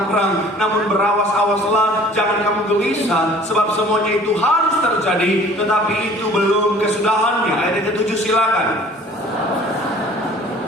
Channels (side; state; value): both; normal; correlation 0.50